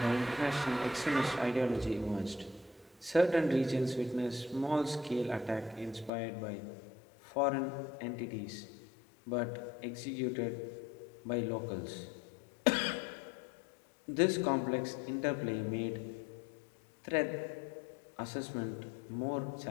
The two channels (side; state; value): right; drops out; at 6.1 s